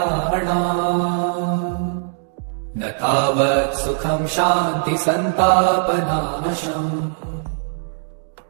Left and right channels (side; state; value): left; silent; digital silence